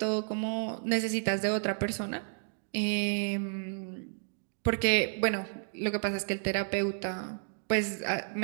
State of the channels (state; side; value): silent; left; digital silence